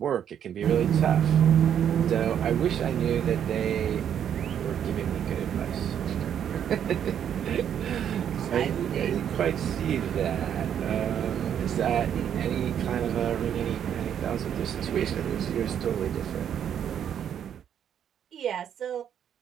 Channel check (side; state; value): left; quieter; 9.1 dB